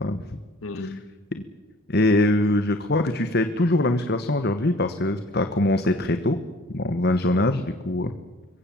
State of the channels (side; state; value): both; normal; correlation 0.52